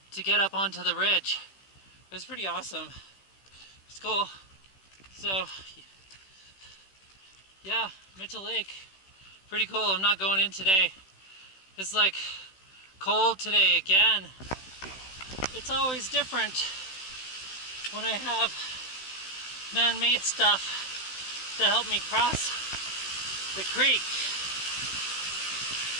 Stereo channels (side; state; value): right; late; 16 ms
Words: to get up onto the ridge. It was pretty awesome. It's cool. So yeah, Mitchell Lake, pretty cool. I'm not going in today. It's like cold today again. It's always different when I have man-made stuff to help me cross the creek.